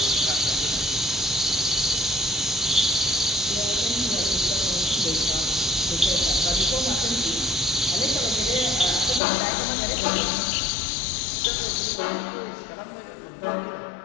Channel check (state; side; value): drops out; right; at 9.2 s